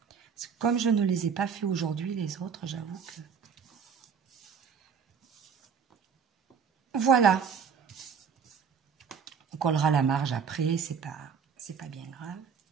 Parce que comme je ne les ai pas fait aujourd'hui, les autres, j'avoue que... Voilà. On collera la marge après, c'est pas bien grave.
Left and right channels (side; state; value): left; quieter; 6.6 dB